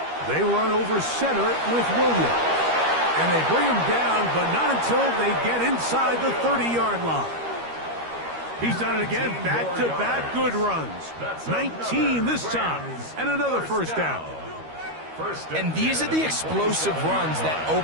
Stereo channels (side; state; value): left; late; 13 ms